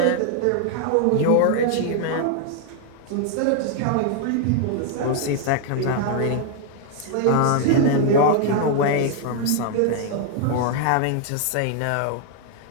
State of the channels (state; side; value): different; both; correlation 0.00